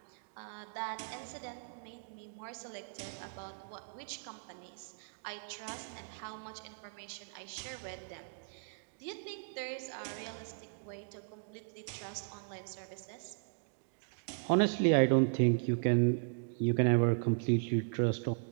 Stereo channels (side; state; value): left; silent; digital silence